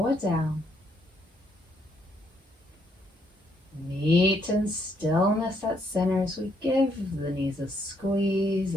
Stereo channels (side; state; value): both; normal; correlation 0.73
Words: it down. Meet in stillness at center as we give the knees a squeeze